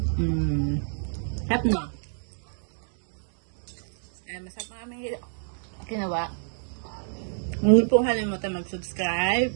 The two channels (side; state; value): left; silent; digital silence